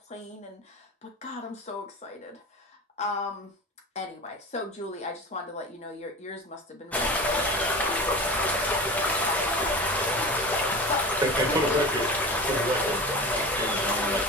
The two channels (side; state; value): both; normal; correlation 0.32